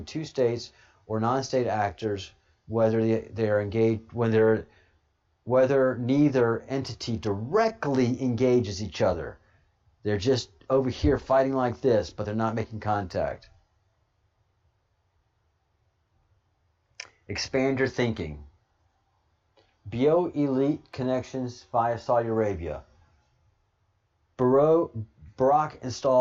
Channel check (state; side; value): identical; both; correlation 1.00